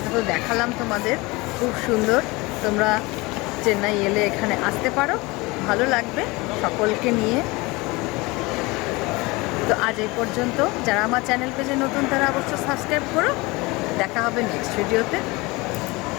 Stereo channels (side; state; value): right; quieter; 23.6 dB